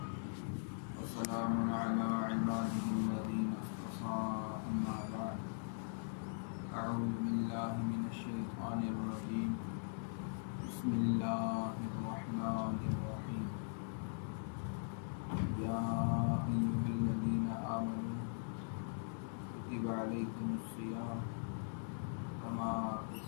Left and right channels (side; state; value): right; silent; digital silence